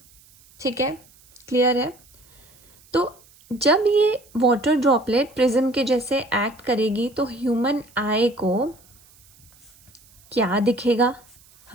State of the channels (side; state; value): right; noise; hiss, 28 dB below the sound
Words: ठीक है, clear है? तो जब ये water droplet prism के जैसे एक्ट करेगी तो ह्यूमन आई को क्या दिखेगा,